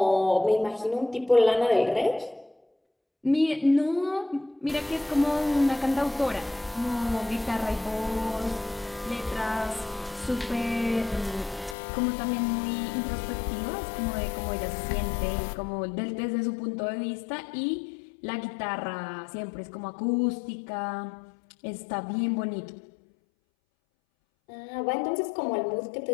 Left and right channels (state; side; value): drops out; right; at 11.8 s